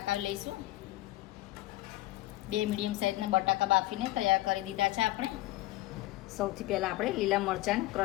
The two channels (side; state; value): right; quieter; 17.4 dB